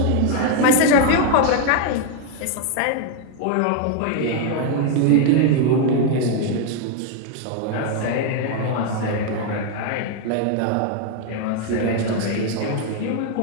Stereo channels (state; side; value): different; both; correlation 0.00